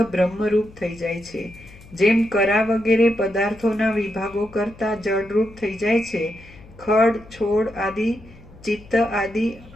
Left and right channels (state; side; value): noise; left; hum, 22 dB below the sound